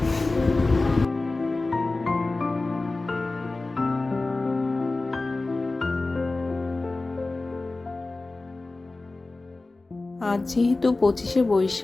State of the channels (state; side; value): quieter; right; 3.3 dB